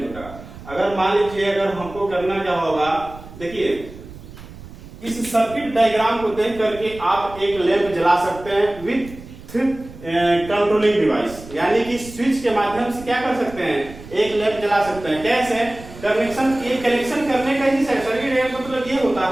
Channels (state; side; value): noise; right; rumble, 16 dB below the sound